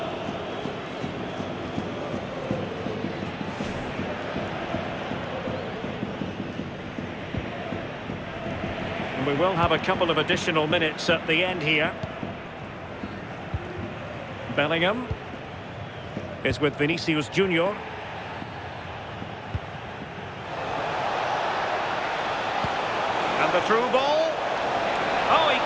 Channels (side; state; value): both; identical; correlation 1.00